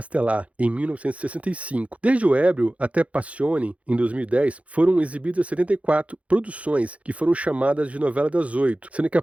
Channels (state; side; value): late; left; 0.064 ms